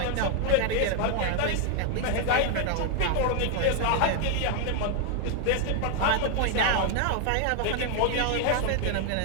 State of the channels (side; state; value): both; different; correlation 0.00